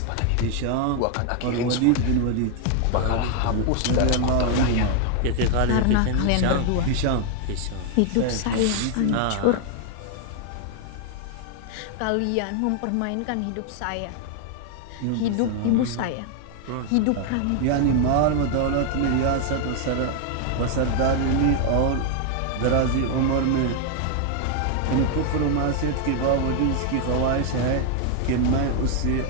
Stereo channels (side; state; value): both; different; correlation 0.00